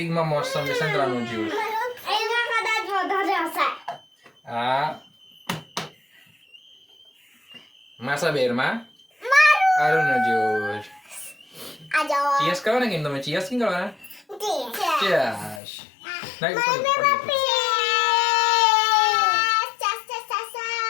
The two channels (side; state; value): right; drops out; at 15.6 s